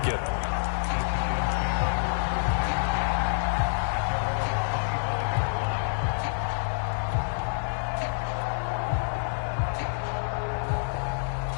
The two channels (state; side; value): silent; right; 56 dB below the other